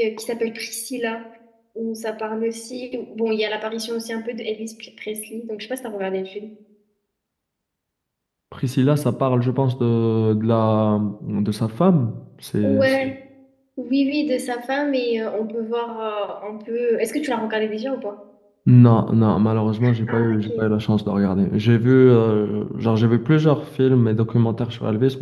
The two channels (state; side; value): identical; both; correlation 1.00